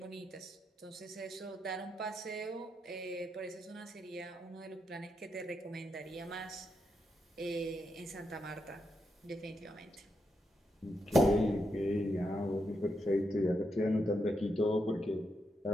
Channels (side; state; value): both; normal; correlation 0.83